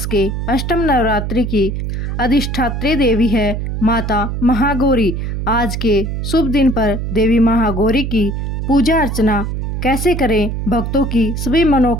के अष्टम नवरात्रि की अधिष्ठात्री देवी है माता महागौरी। आज के शुभ दिन पर देवी महागौरी की पूजा अर्चना कैसे करें, भक्तों की सभी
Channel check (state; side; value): noise; right; hum, 3 dB below the sound